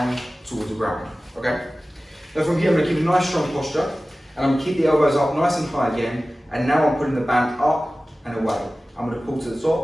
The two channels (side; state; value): both; normal; correlation 0.96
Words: towards the ground, okay? Now from here, I'm going to keep a nice strong posture, and I'm going to keep the elbows up nice and high again, and now I'm putting the band up and away. I'm going to pull to the